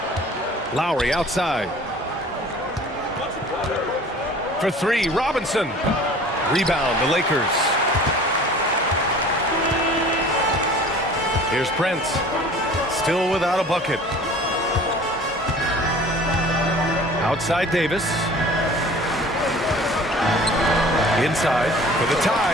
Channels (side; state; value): both; normal; correlation 0.46